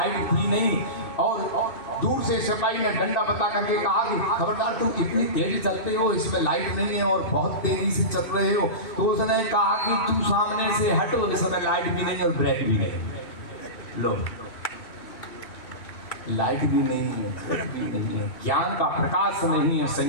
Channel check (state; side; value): late; right; 2.7 ms